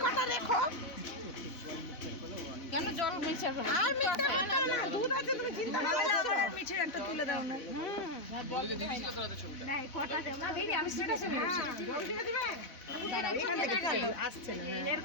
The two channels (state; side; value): late; right; 4.0 ms